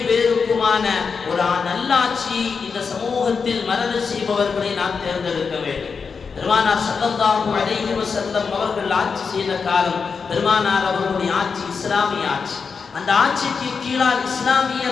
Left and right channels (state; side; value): quieter; right; 5.4 dB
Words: பேருக்குமான ஒரு நல்லாட்சி இந்த சமூகத்தில் மரண செய்பவர்களை நாம் தேர்ந்தெடுக்க வேண்டும். பெருமானார் ஸல்லல்லாஹு அலைஹி வஸல்லம் அவர்கள் ஆட்சி செய்த காலம் பெருமானார் அவர்களுடைய ஆட்சி இஸ்லாமிய ஆட்சி. அந்த ஆட்சிக்கு கீழால்